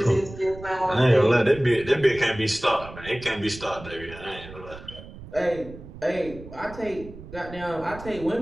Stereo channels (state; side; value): noise; right; rumble, 15 dB below the sound